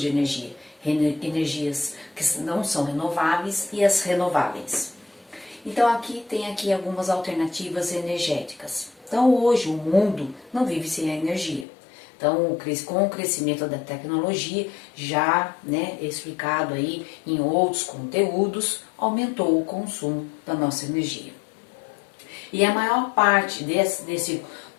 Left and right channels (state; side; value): drops out; right; at 11.7 s